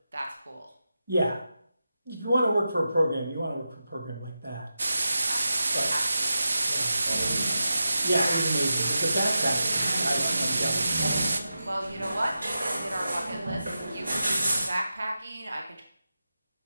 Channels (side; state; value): both; inverted; correlation -0.91